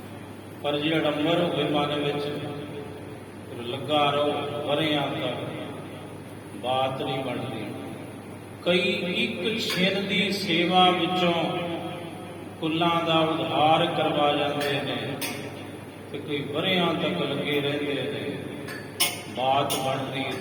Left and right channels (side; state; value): both; identical; correlation 1.00